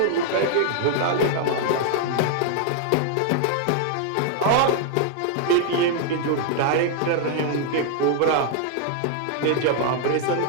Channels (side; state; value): both; different; correlation 0.00